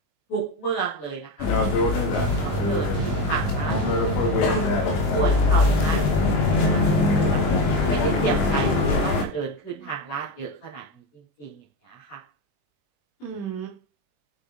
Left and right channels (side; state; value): right; late; 21 ms